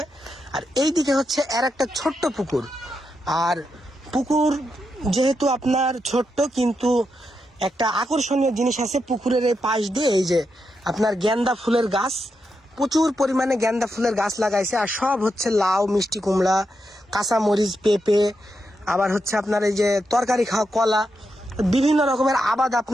আর এইদিকে হচ্ছে এর একটা ছোট্ট পুকুর। আর পুকুর যেহেতু আপনার ছোট্ট, কিন্তু একটা আকর্ষণীয় জিনিস আছে পুকুরের এই পাশ দিয়ে, এই যে আপনার গেন্দা ফুলের গাছ, প্রচুর পরিমাণে গেন্দা ফুলের গাছ লাগাইছে। আর সব হচ্ছে লাউ, মিষ্টি কুমড়া, কাঁচামরিচ, পেঁপে, আবার হচ্ছে আপনার এই যে তরকারি খাওয়া কলা, বিভিন্ন রকমের আবাদ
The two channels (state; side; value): normal; both; correlation 0.84